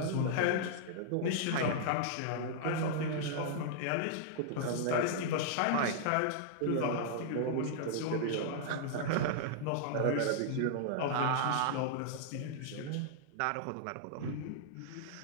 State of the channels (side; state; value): both; different; correlation -0.01